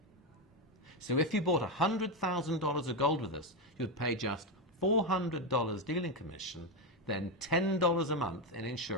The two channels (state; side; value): normal; both; correlation 0.09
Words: So if you bought $100,000 of gold with us, you'd pay just $400 dealing commission, then $10 a month in